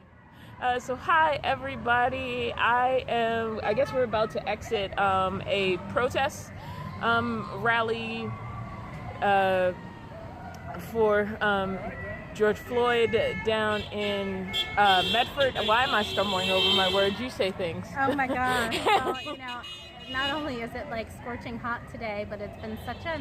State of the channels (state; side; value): identical; both; correlation 1.00